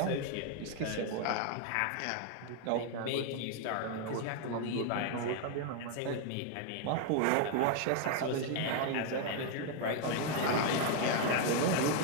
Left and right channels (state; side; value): different; both; correlation 0.00